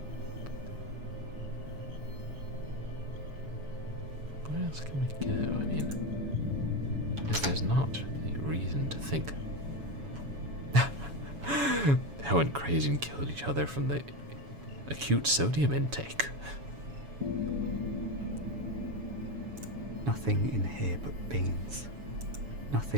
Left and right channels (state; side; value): late; left; 7.1 ms